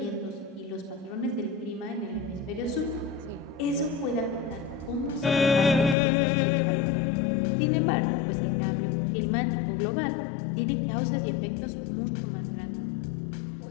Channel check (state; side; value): drops out; right; at 6.0 s